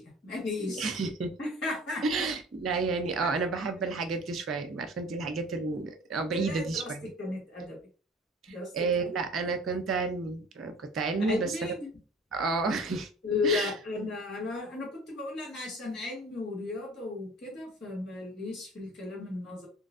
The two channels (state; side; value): normal; both; correlation 0.44